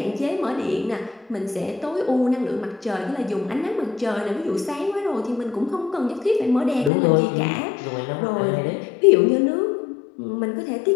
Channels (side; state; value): right; drops out; at 6.9 s